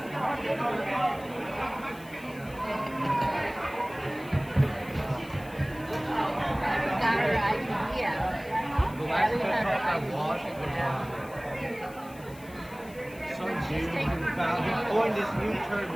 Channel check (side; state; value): left; noise; hiss, 22 dB below the sound